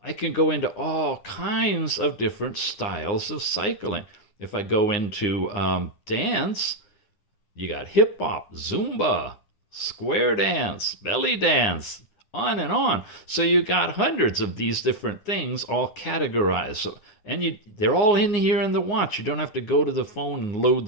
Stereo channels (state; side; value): late; right; 9.6 ms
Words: I can go into all kinds of different styles of cycling. If I go into dance, you got hip hop, Zumba, square dance, belly dance, on and on. So you got hundreds of these different things all categorized. So, and they're all in here in the watch. You don't have to go to the phone and load